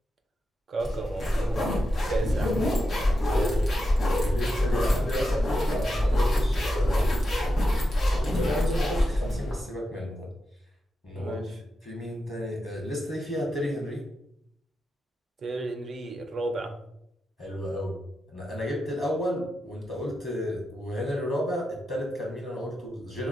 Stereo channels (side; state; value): both; normal; correlation 0.88